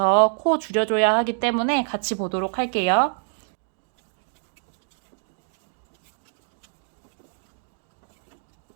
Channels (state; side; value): silent; left; 61 dB below the other